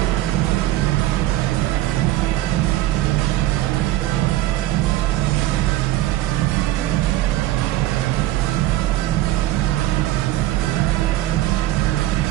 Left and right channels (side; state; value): left; quieter; 15.0 dB